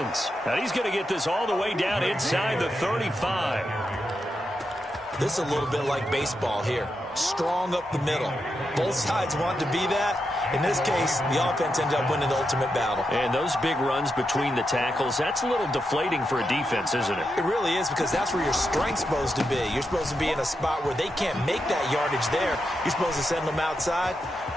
And he's going to get this all the way down inside the 35. This is a little bit like baseball here. Strong up the middle. Both sides want to be that. In this case, the offense ended up winning the ultimate battle. And those big runs between the tackles, that's a little deflating for a defense, isn't it? It really is, because that's where your strength's supposed to be. You're supposed to be in a spot where they can't make that yardage there. You're supposed to send them outside.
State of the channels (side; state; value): both; normal; correlation 0.86